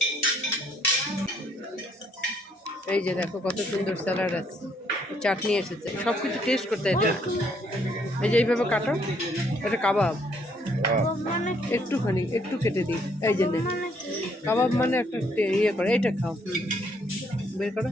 এই যে দেখো কত সুন্দর স্যালাড আছে, চাটনি এসেছে, সব কিছু টেস্ট করতে হয়। এটা এই যে এইভাবে কাটো, এটা কাবাব। একটুখানি একটু কেটে দিই, এই যে নে। কাবাব মানে একটা ইয়ে করে, এইটা খাও। বের করো,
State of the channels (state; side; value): normal; both; correlation 0.68